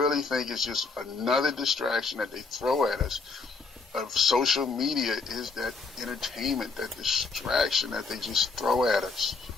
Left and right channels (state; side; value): quieter; right; 4.4 dB